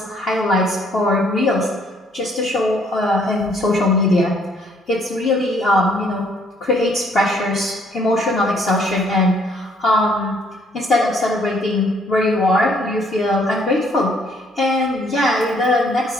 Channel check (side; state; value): both; normal; correlation 0.65